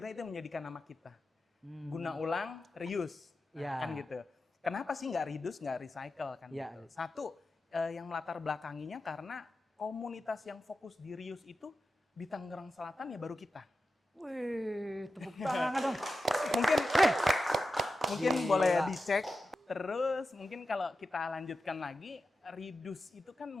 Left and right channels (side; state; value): both; normal; correlation 0.91